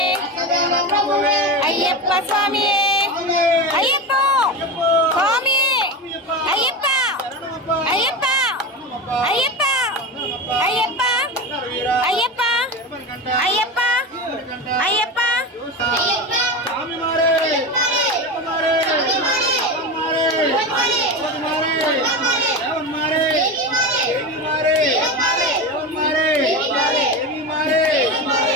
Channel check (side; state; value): both; normal; correlation 0.22